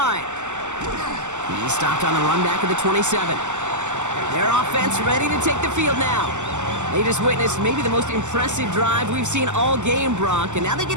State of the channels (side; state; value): left; late; 0.84 ms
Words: He's stopped on the run back of the 27. Their offense ready to take the field now. They just witnessed maybe the most impressive drive we've seen all game, Brock, and now they